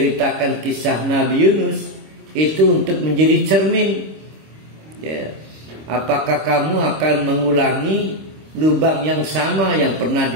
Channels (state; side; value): late; left; 26 ms